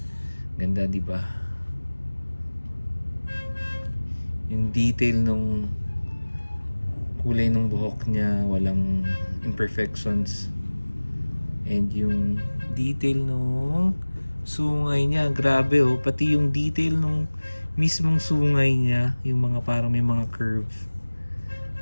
Ganda, di ba? Yung detail nung kulay ng buhok niya, walang imperfections. And yung detail nung sungay niya, grabe oh. Pati yung detail nung mismong sungay niya, yung mga parang may mga curve.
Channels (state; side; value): inverted; both; correlation -1.00